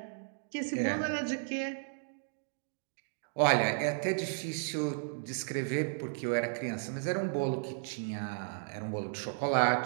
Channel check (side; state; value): left; silent; digital silence